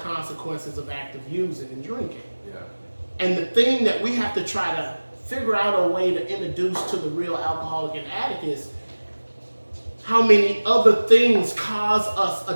of active using and drinking. And the thing that we have to try to figure out a way to introduce to the real alcoholic and addict is how many other things cause us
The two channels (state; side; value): inverted; both; correlation -1.00